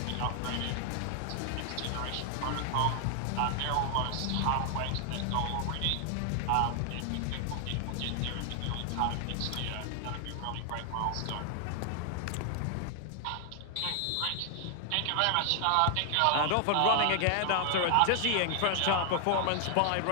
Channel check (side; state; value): both; different; correlation 0.00